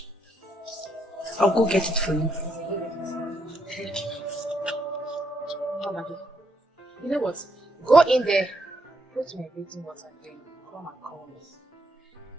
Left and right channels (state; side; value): normal; both; correlation 0.76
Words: I'll go get it for you. You know what? Go in there, put my bathing water, then come and call me.